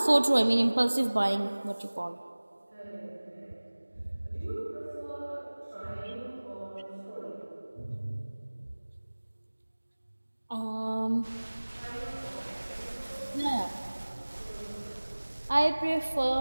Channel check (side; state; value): both; inverted; correlation -1.00